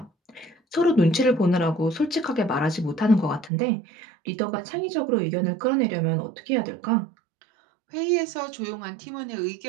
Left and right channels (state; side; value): drops out; left; at 3.5 s